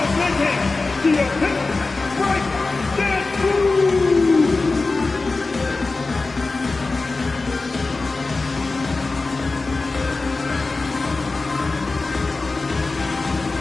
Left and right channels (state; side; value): quieter; right; 3.6 dB